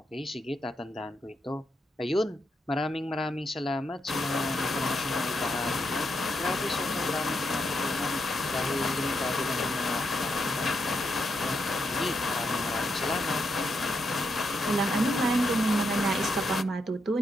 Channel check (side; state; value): both; normal; correlation 0.81